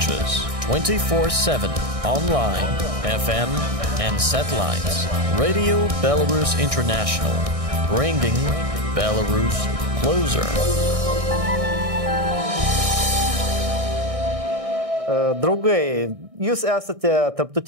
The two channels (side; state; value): left; late; 1.6 ms